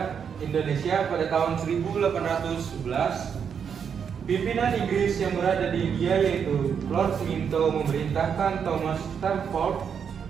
Indonesia pada tahun 1811, pimpinan Inggris yang berada di India yaitu Lord Minto memerintahkan Thomas Stamford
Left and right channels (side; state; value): left; quieter; 7.2 dB